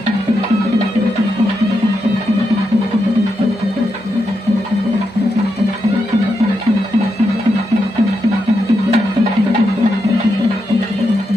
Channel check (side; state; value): both; normal; correlation 0.84